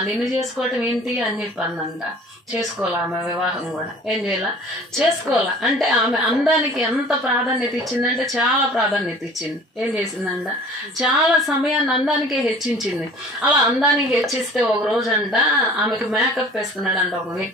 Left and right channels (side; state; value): both; normal; correlation 0.47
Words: నిన్ను చేసుకోవటం ఏంటి అని చెప్పందంట. చేసుకోవాలా ఆమె వివాహం కూడా? ఏం చేయాల? చేసుకోవాలా. అంటే ఆమె అందానికి ఎంత ప్రాధాన్యత ఇచ్చిందంటే చాలా ప్రాధాన్యత ఇచ్చింది. ఏం చేసిందంట, చాలా సమయాన్ని అందానికే హెచ్చించింది. అలా అందానికి హెచ్చిస్తే ఒక రోజు అంట ఆమెకు మేకప్ వేస్తున్నాడంట ఒక